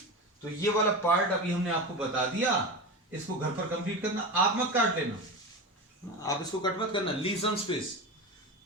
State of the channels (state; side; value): normal; both; correlation 0.24